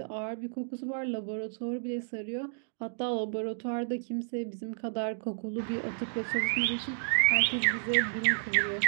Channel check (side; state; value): left; silent; digital silence